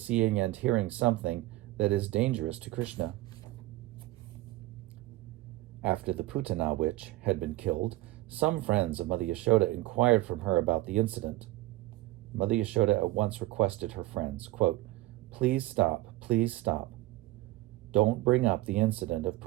and hearing something that is dangerous to Krishna. After the Putana witch had been killed, some friends of Mother Yashoda inquired from her about the incident. Mother Yashoda at once requested her friends, quote, please stop. Don't bring up the incident of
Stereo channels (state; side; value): quieter; left; 17.8 dB